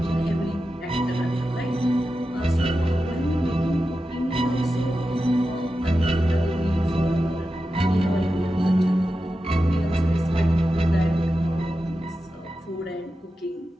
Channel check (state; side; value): normal; both; correlation 0.91